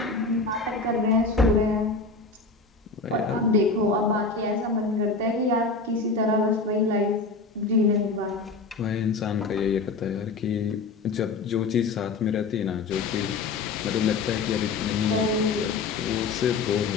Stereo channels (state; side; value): quieter; right; 4.0 dB